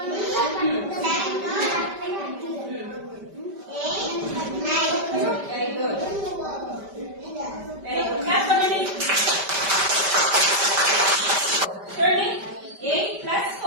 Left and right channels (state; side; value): late; left; 5.1 ms